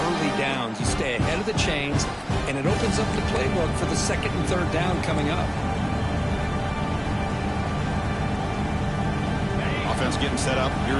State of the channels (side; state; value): both; identical; correlation 1.00